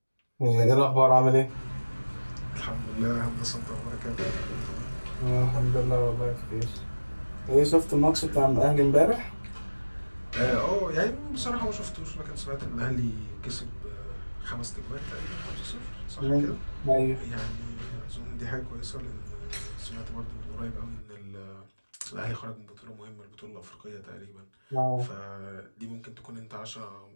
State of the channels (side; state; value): both; inverted; correlation -1.00